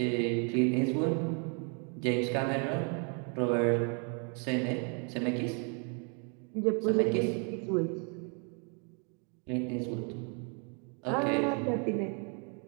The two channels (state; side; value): quieter; left; 38.1 dB